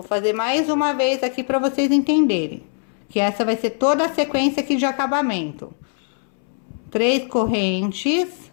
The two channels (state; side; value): silent; right; 65 dB below the other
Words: fazer mais uma vez aqui para vocês entenderem. que essa vai ser toda a sequência aqui de acabamento. 3 correntes,